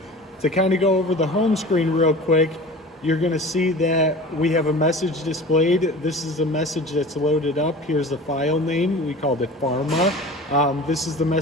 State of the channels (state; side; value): normal; both; correlation 0.38